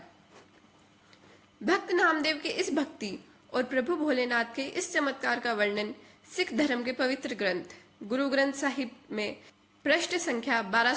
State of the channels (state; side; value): identical; both; correlation 1.00